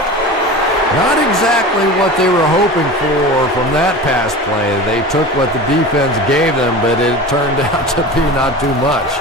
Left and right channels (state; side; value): normal; both; correlation 0.33